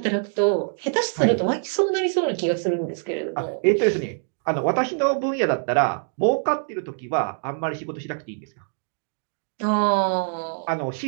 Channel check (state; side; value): silent; left; digital silence